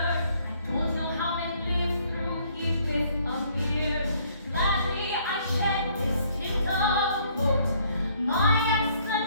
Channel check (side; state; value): both; inverted; correlation -0.64